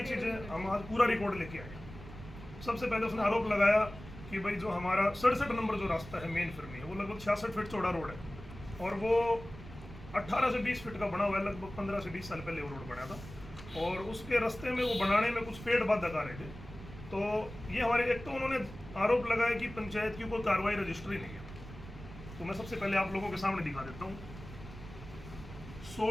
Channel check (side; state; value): right; noise; rumble, 14 dB below the sound